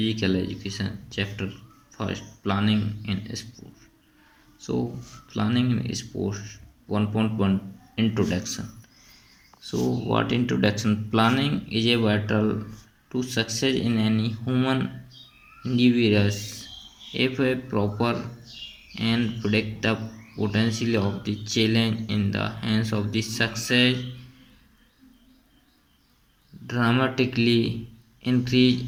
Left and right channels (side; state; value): both; identical; correlation 1.00